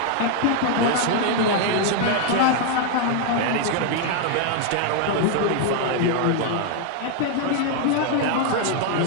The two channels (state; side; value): different; both; correlation 0.00